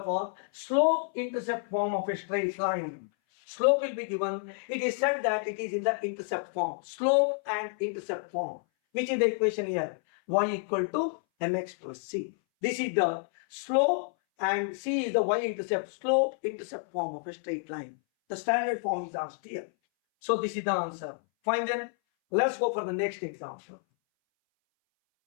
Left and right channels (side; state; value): right; silent; 58 dB below the other